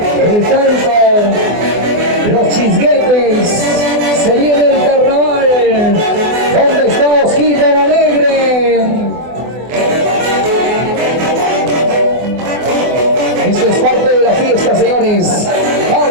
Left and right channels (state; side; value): late; left; 24 ms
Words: el canto, los chisguetes, se viene el carnaval. ¿Dónde está Osquita la Alegre? Esto es parte de la fiesta, señores,